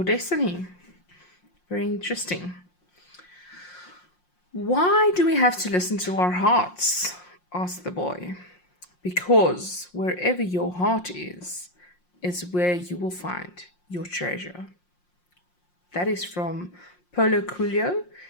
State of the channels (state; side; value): late; right; 5.6 ms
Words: destiny. Very interesting. Why do we have to listen to our hearts? Asked the boy. Because wherever your heart is where you will find your treasure. That is from Paulo Coelho,